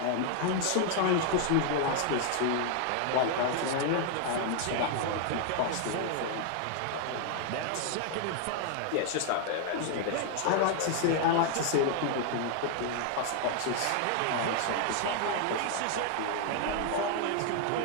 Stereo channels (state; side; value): different; both; correlation 0.00